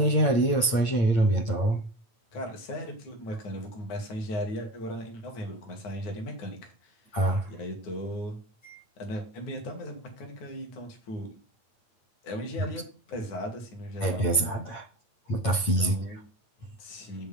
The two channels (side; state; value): right; late; 8.9 ms